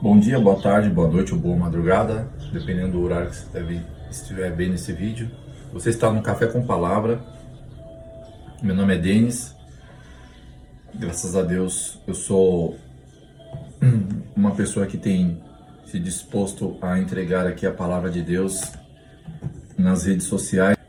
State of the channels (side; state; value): both; identical; correlation 1.00